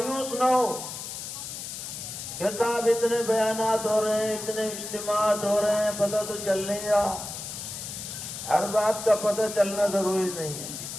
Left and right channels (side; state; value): left; noise; hiss, 8 dB below the sound